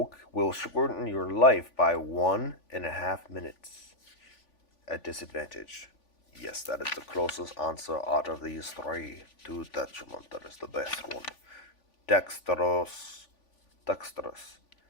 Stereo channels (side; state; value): right; late; 3.5 ms